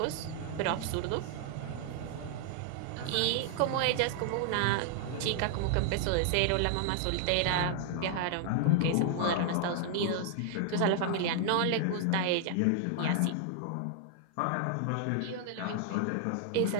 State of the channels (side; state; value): both; different; correlation 0.00